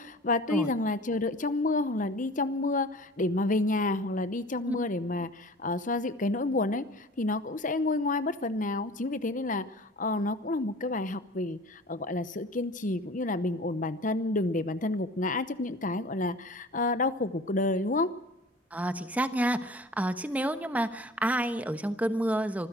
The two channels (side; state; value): both; normal; correlation 0.43